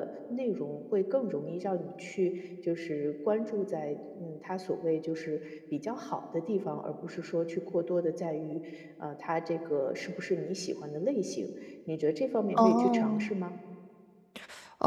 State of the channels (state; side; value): identical; both; correlation 1.00